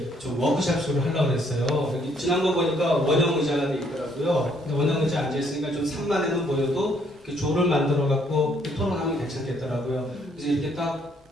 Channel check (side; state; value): both; normal; correlation 0.67